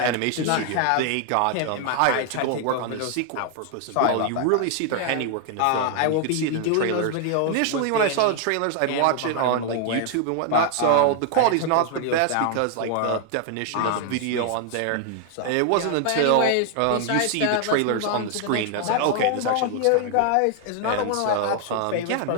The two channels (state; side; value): different; both; correlation 0.00